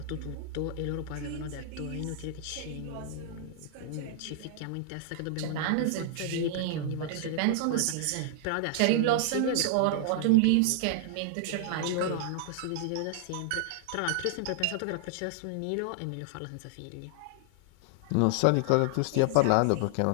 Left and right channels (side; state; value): both; different; correlation -0.01